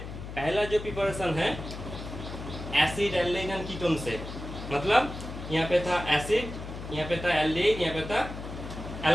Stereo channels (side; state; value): left; noise; hum, 9 dB below the sound